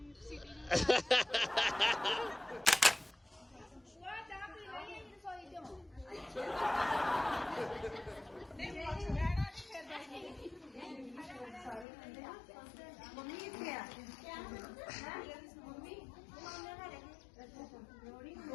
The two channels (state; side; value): drops out; right; at 11.9 s